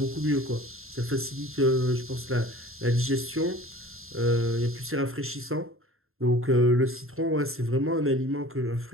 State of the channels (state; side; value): late; left; 0.61 ms